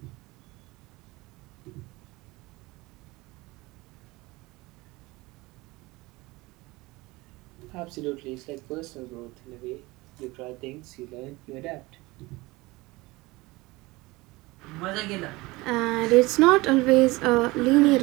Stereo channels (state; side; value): quieter; left; 21.9 dB